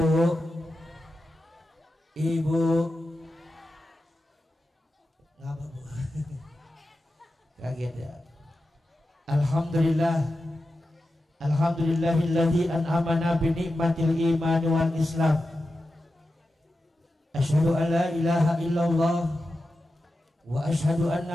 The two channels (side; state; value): both; normal; correlation 0.91